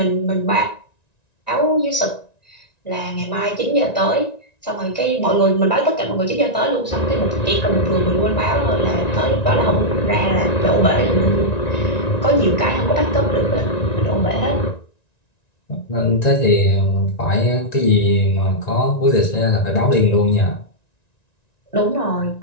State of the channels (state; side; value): late; right; 1.9 ms